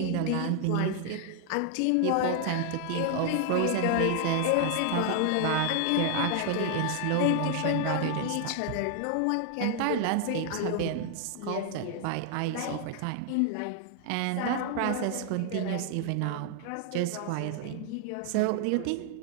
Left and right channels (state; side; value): different; both; correlation 0.00